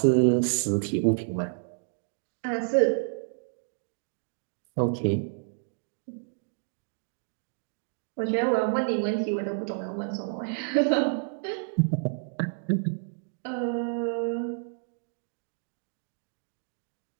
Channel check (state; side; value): silent; left; digital silence